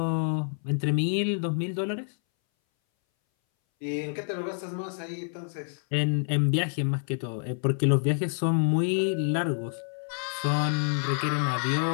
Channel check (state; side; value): silent; right; 60 dB below the other